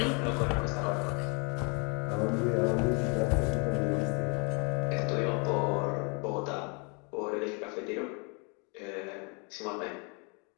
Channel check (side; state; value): right; quieter; 33.2 dB